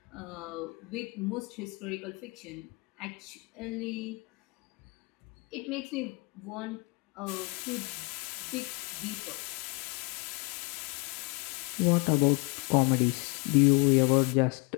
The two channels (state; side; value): quieter; right; 30.3 dB